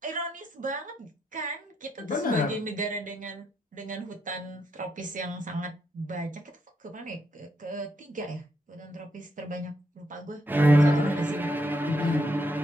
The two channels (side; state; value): both; normal; correlation 0.78